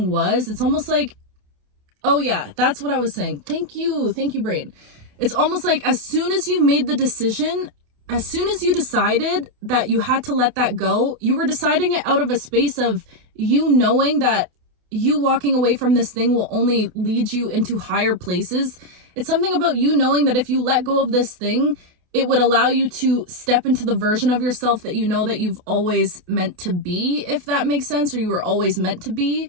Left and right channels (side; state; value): left; late; 28 ms